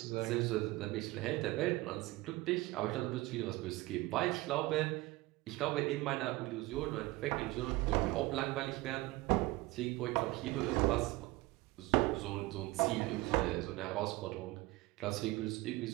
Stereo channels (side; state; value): left; quieter; 20.3 dB